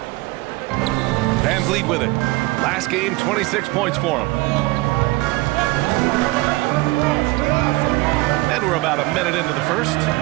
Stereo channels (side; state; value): left; quieter; 22.2 dB